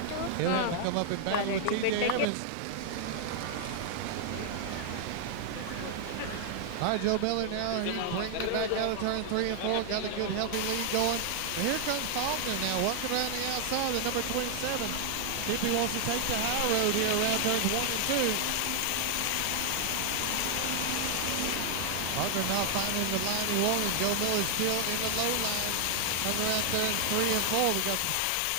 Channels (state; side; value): different; both; correlation 0.00